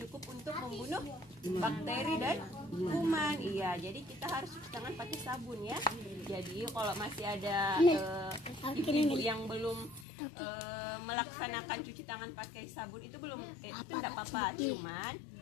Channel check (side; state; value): right; drops out; at 10.1 s